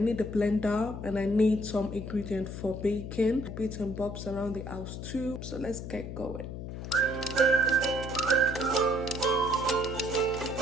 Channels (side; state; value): left; noise; hum, 8 dB below the sound